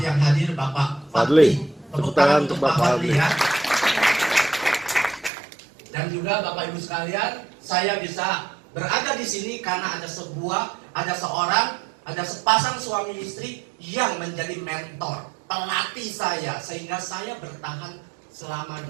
yang hadir Bapak Fadli. Tepuk tangan untuk Bapak Fadli ya. Dan juga Bapak Ibu sekalian, saya bisa berada di sini karena ada sepasang suami istri yang menjadi mentor, pelatih saya, sehingga saya bertahan selama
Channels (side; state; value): left; drops out; at 5.3 s